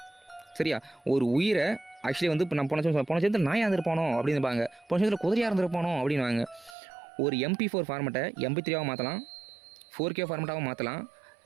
சரியா? ஒரு உயிரை ஆக்சுவலி வந்து இப்போ நம்ம போன சேர்ந்து நாயாக இருந்திருப்பானோ அப்படின்பாங்க, போன சேர்ந்து குதிரையாக இருந்திருப்பானோ அப்படின்வாங்க. ஒரு MP4 ஃபார்மெட்டை MP3 மாற்றலாம், 4K ஃபார்மெட்டாகவும் மாற்றலாம்,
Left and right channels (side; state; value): left; drops out; at 6.8 s